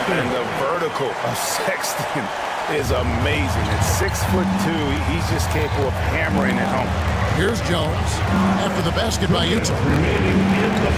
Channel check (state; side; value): identical; both; correlation 1.00